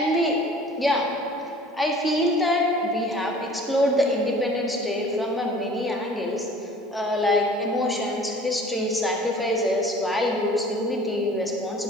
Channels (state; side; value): normal; both; correlation 0.48